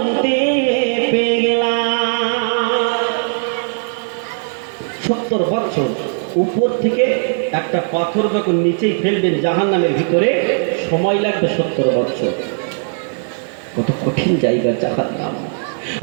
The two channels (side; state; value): left; silent; 62 dB below the other